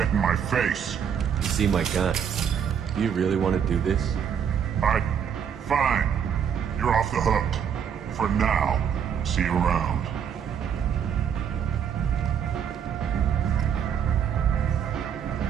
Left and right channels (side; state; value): left; quieter; 8.0 dB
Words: in my face. You seem my kind. Do you really want to do this? Fine. You're off the hook. For now. See you around.